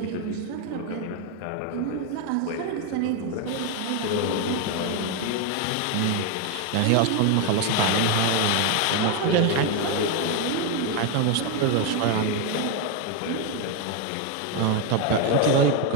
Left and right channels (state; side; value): different; both; correlation 0.01